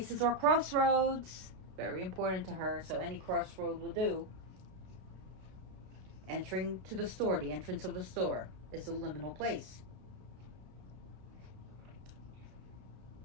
are crossroads. Very important to her, so any crossroad will do. Entering to the store, the entrance of the store, is a liminal place.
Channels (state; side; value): late; left; 32 ms